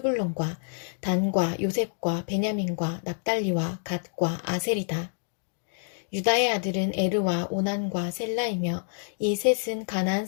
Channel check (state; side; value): silent; right; digital silence